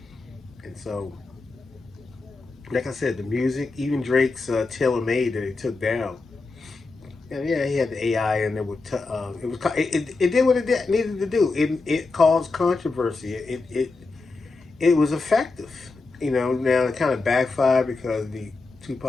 And so, like I said, the music, even Drake's Tailor Made that he took down. And yeah, he had the AI, and it did what it needed to do. It caused controversy. It was effective. Now it kind of backfired because the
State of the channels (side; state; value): right; quieter; 3.8 dB